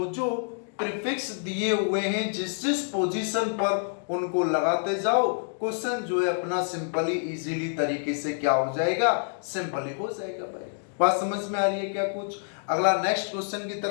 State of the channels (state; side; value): silent; right; digital silence